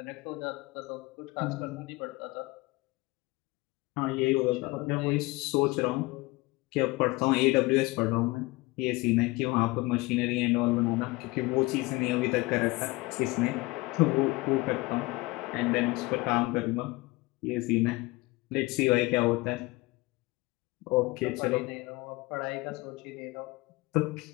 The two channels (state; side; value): quieter; right; 22.8 dB